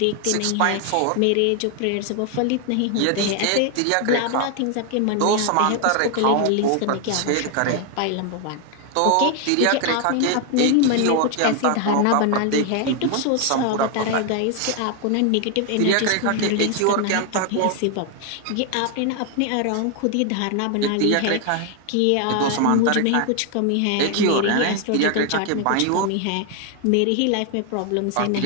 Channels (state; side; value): different; both; correlation 0.00